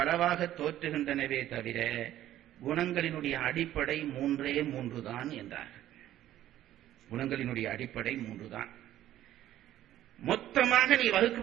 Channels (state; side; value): quieter; left; 13.0 dB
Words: தோற்றுகின்றனவே தவிர குணங்களினுடைய அடிப்படை மூன்றே மூன்றுதான் என்றார். குணங்களினுடைய அடிப்படை மூன்றுதான். மொத்தமாக நீ